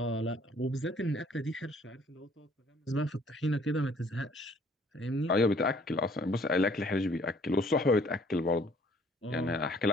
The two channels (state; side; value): normal; both; correlation 0.59